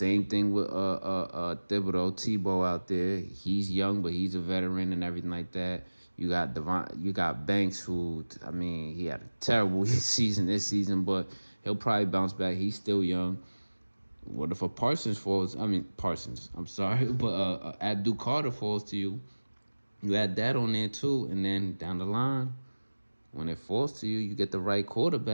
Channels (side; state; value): both; inverted; correlation -1.00